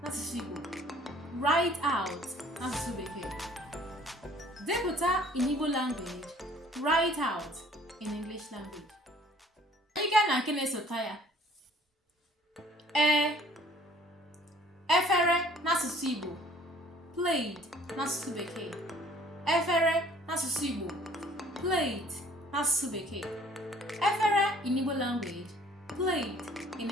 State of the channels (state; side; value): normal; both; correlation 0.56